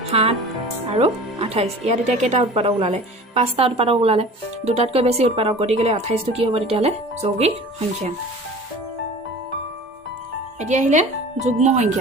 7 আৰু 28। ইয়াত এতিয়া কেইটা উৎপাদক ওলালে? 5টা উৎপাদক ওলালে। 2টাতকৈ বেছি উৎপাদক। গতিকে 28টো কি হ'ব তেতিয়াহ'লে? যৌগিক সংখ্যা। এতিয়া আহিলে যুগ্ম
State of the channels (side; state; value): both; normal; correlation 0.41